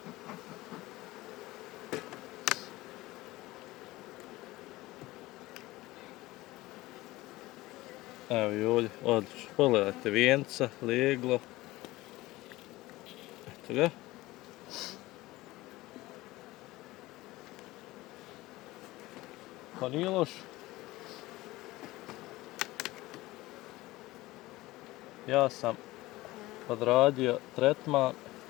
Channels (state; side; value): quieter; right; 18.9 dB